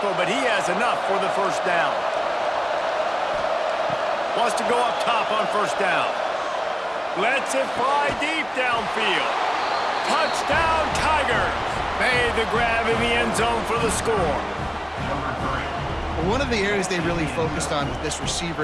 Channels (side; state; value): both; identical; correlation 1.00